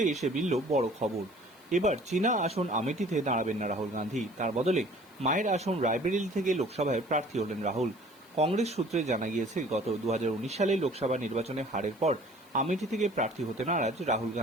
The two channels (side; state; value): right; noise; hiss, 30 dB below the sound